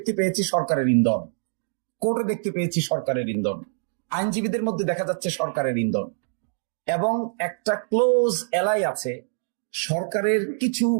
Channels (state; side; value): silent; left; digital silence